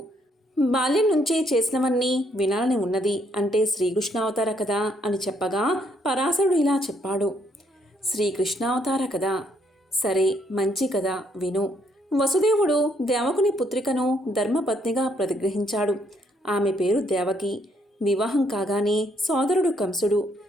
బాల్యం నుంచే చేసినవన్నీ వినాలని ఉన్నది అంటే శ్రీకృష్ణావతార కదా అని చెప్పగా పరాశరుడు ఇలా చెప్పాడు. శ్రీకృష్ణావతార కదా, సరే మంచి కదా, విను. వసుదేవుడు దేవకుని పుత్రికను ధర్మపత్నిగా ప్రతిగ్రహించాడు. ఆమె పేరు దేవకి. వివాహం కాగానే సోదరుడు కంసుడు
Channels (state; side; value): normal; both; correlation 0.71